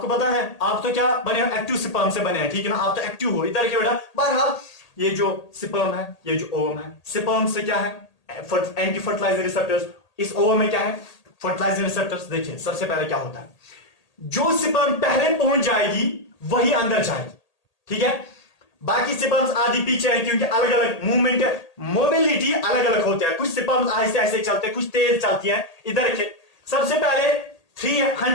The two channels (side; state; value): right; late; 1.8 ms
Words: पता है आप तो क्या बने हो, एक्टिव स्पर्म से बने हैं, ठीक है ना, आप तो एक्टिव हो। इधर के बेटा बहरहाल ये जो स्पर्म है, ये जो ओवम है, स्पर्म से क्या है, एंटी फर्टिलाइजिंग रिसेप्टर्स, इस ओवम में क्या है, फर्टिलाइजिंग रिसेप्टर्स। देखिए सबसे पहले क्या होता है, जो स्पर्म पहले पहुंच जाएगी वही अंदर जाएगी, ठीक है, बाकी स्पर्म्स आदि पीछे है, क्योंकि अलग अलग मूवमेंट, मोबिलिटी अलग अलग होते हैं। कुछ स्पर्म्स ऐसे ऐसे चलते हैं, कुछ तेज चलती हैं। इधर देखिए, सबसे पहले